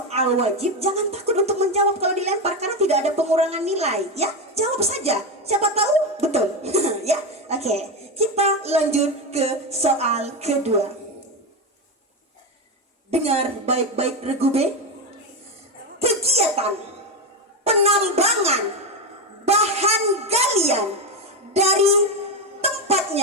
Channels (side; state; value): both; normal; correlation 0.13